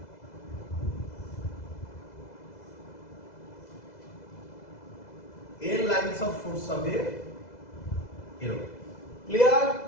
এর লাইনস অফ ফোর্স হবে এরকম। ক্লিয়ার?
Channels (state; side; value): late; right; 2.0 ms